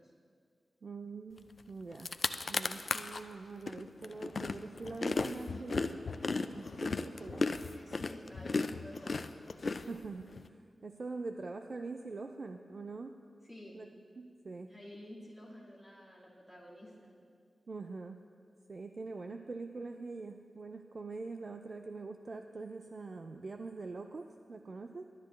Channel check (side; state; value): both; normal; correlation 0.91